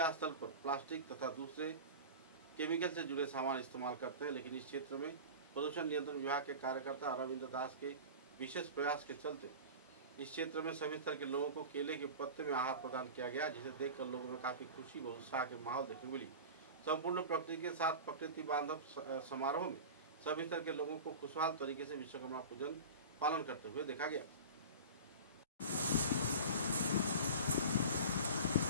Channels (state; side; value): inverted; both; correlation -0.33